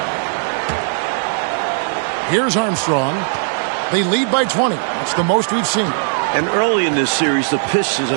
Here's Armstrong. They lead by 20. That's the most we've seen. And early in this series, the Pistons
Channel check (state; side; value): silent; left; digital silence